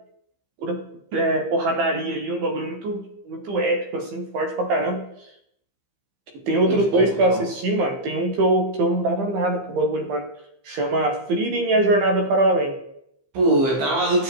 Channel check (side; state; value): left; late; 15 ms